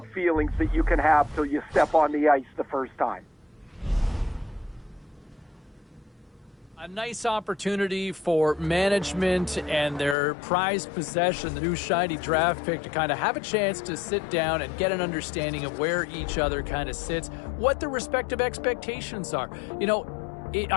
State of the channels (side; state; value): right; drops out; at 10.2 s